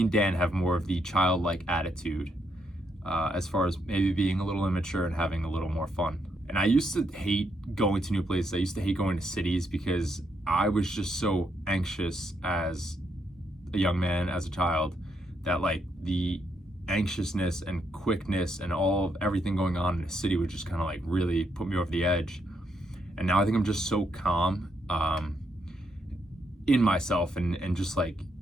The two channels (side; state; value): both; normal; correlation 0.78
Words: and Dan have more of the childlike attitude as far as maybe being a little immature and having a little more fun. And I used to hate going to new places. I used to hate going to cities because I was just so anxious as a young man, as a child, that like the anxiousness and quickness and everything going on in a city would just kind of like really put me over the edge. And now I think I'm just so calm in myself and just like